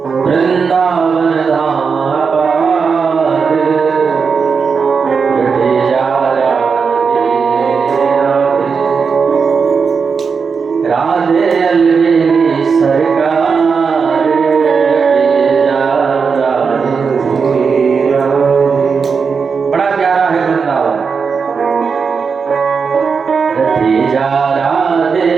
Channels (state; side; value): quieter; left; 5.5 dB